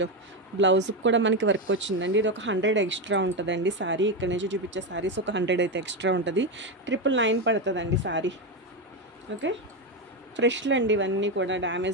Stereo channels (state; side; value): normal; both; correlation 0.11